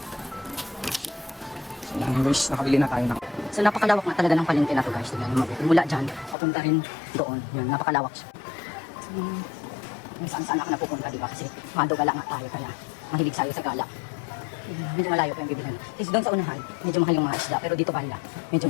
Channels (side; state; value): right; drops out; at 6.4 s